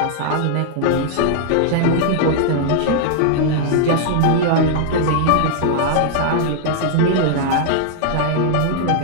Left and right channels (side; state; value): both; different; correlation -0.01